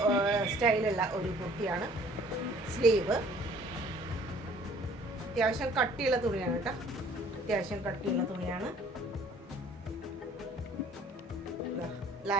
സ്റ്റൈലുള്ള ഒരു കുർത്തിയാണ്. സ്ലീവ് അത്യാവശ്യം കട്ടിയുള്ള തുണിയാണ് കേട്ടോ. അത്യാവശ്യം കട്ടിയുള്ള തുണിയാണ്.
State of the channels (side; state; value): both; normal; correlation 0.54